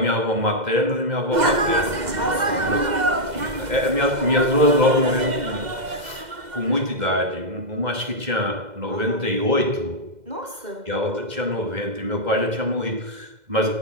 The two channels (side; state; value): left; late; 2.0 ms